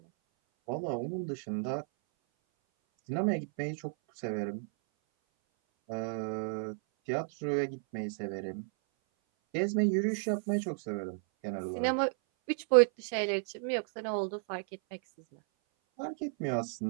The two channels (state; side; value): silent; left; 56 dB below the other